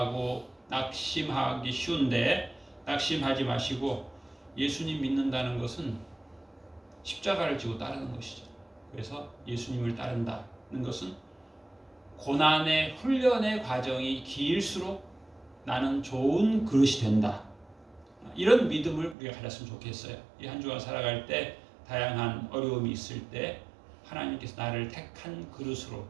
낙심하기 쉬운데, 낙심하지 마시고 예수님 믿는다는 것은 십자가를 지고 따르는 것이죠. 그래서 예수님을 따른다는 것은 고난의 훈련의 과정이 길수록 나는 좋은 그릇이 된다. 이런 믿음을 우리가 가졌으면 좋겠어요. 이 한 주간 살아갈 때 다양한 어려움이 있을 때 하나님께서 나를 택한 그릇으로,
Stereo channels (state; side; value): drops out; left; at 19.2 s